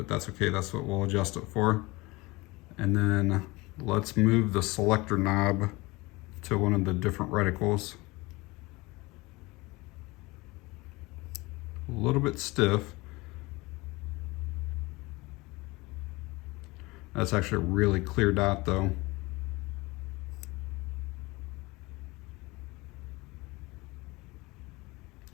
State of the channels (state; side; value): quieter; right; 22.8 dB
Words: that's okay. That's what we'll adjust it for. And then let's move the selector knob to one of the different reticles. A little bit stiff. That's actually a really clear dot though.